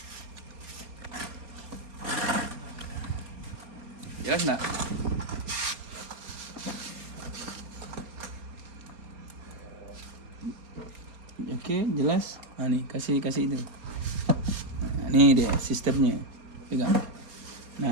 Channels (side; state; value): left; late; 4.3 ms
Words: Jelas nggak? Oke, jelas. Nah, nih kasih itu. Nah, ini dia sistemnya. Pegang.